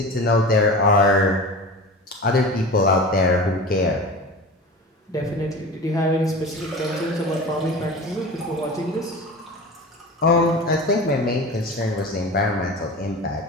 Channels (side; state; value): both; normal; correlation 0.33